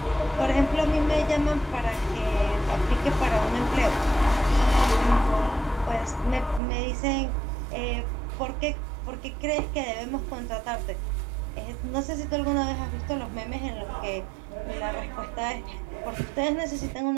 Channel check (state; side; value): drops out; left; at 6.6 s